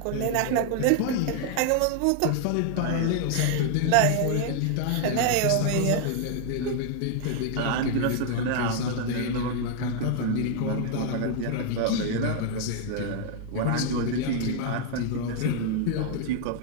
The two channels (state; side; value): different; both; correlation 0.00